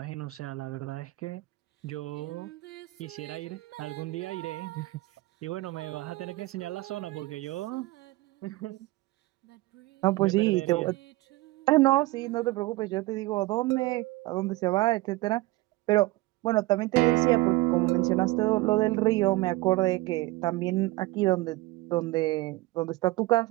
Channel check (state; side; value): quieter; left; 20.0 dB